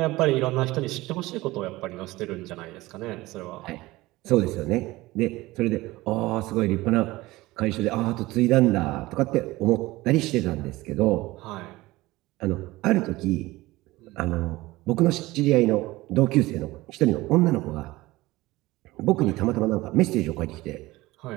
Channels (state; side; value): quieter; left; 19.3 dB